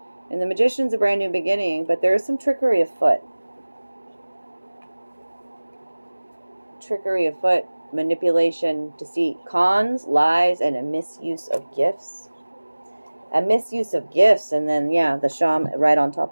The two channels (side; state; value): both; inverted; correlation -1.00